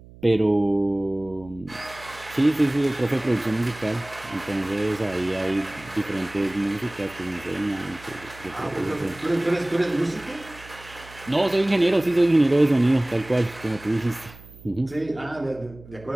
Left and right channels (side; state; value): right; noise; hum, 20 dB below the sound